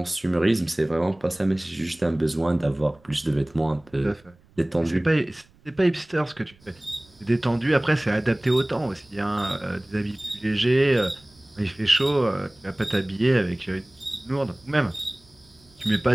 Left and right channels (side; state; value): right; noise; rumble, 30 dB below the sound